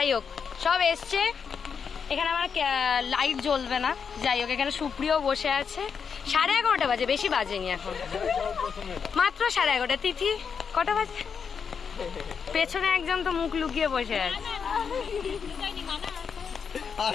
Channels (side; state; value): right; quieter; 6.4 dB